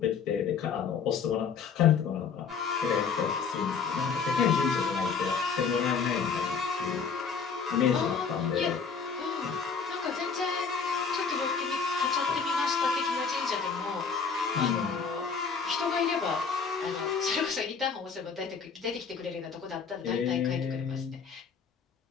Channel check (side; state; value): right; quieter; 5.9 dB